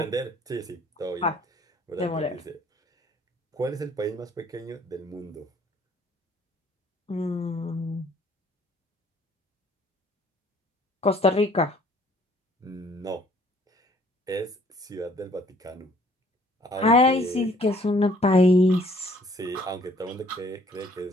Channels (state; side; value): normal; both; correlation 0.59